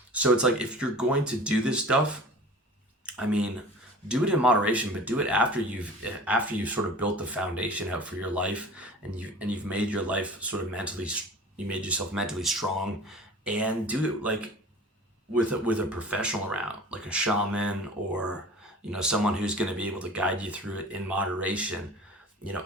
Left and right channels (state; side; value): normal; both; correlation 0.40